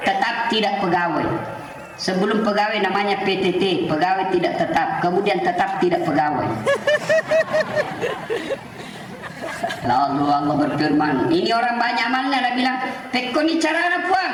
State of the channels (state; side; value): identical; both; correlation 1.00